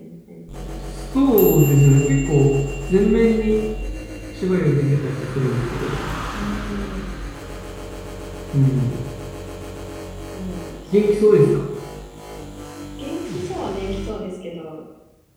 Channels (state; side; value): identical; both; correlation 1.00